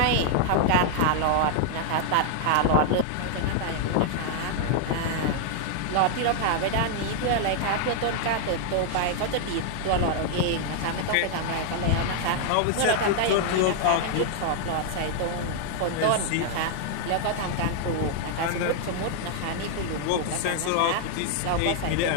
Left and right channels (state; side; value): different; both; correlation 0.00